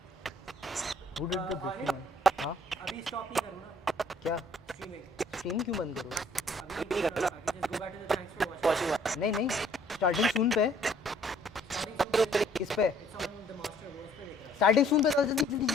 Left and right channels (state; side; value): normal; both; correlation 0.60